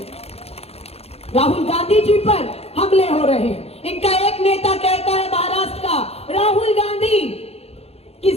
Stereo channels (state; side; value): late; right; 0.29 ms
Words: राहुल गांधी जी पर हमले हो रहे हैं। इनका एक नेता कहता है महाराष्ट्र का, राहुल गांधी की